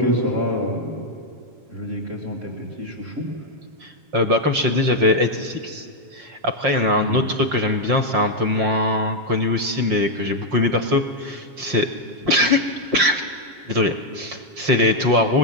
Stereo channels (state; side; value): late; left; 7.3 ms